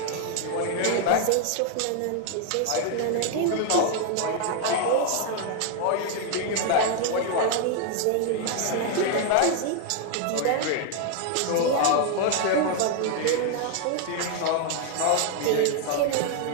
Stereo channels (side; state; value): both; different; correlation 0.00